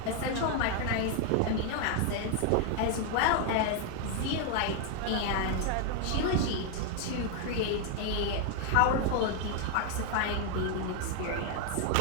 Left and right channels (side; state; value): both; different; correlation 0.00